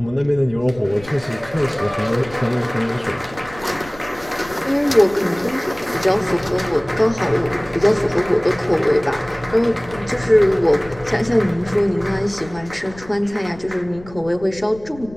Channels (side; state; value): left; noise; rumble, 19 dB below the sound